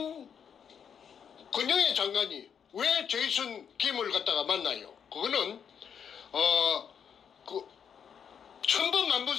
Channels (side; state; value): right; quieter; 7.6 dB